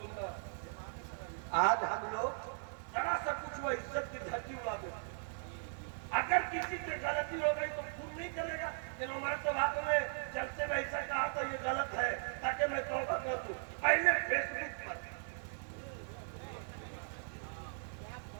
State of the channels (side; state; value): left; silent; 52 dB below the other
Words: آج ہم لوگ ذرا سا کچھ وہ عزت کی دھرتی اڑا دیتے. اگر کسی سے غلطی ہو گئی تو خون نہیں کرے گا کہ عمر تو بات میں جلسے میں ایسا کہا تو یہ غلط ہے تاکہ میں توبہ کر دوں. پہلے فیس بک پر